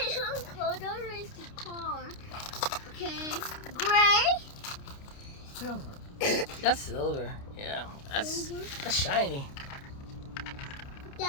Uncle, don't race the car. Okay. Gray. Silver. That's silver. Yeah. That's shiny.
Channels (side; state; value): right; late; 29 ms